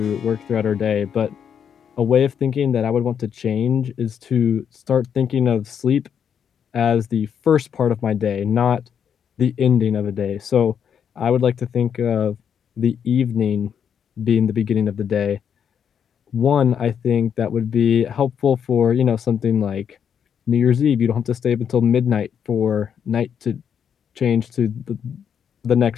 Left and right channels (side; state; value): right; quieter; 8.0 dB